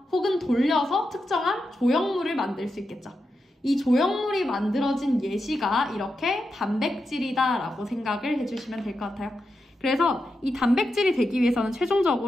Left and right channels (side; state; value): both; normal; correlation 0.87